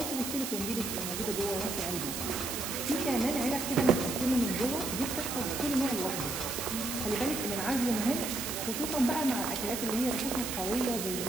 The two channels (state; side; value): noise; right; hiss, 4 dB below the sound